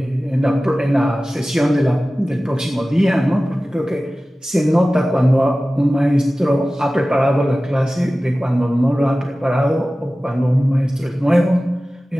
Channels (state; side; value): normal; both; correlation 0.96